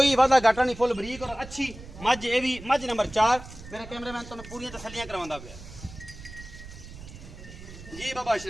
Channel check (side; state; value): right; noise; rumble, 15 dB below the sound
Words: वादा घाटा नहीं, फुल बरीक और अच्छी मज। ये भी मज नंबर 4 मेरा कैमरामैन तुहानूं पूरी तसल्लियां करवांदा पिया जी। बाबा